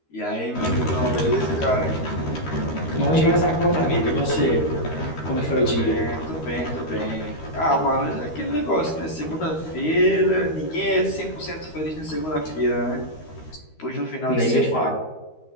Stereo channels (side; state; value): right; late; 13 ms